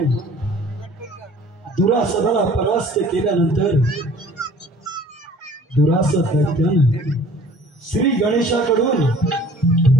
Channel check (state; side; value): normal; both; correlation 0.50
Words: दुरासदाला परास्त केल्यानंतर दुरासद दैत्यानं श्री गणेशाकडून